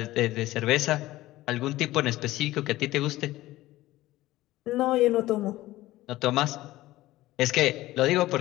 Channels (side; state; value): right; quieter; 16.8 dB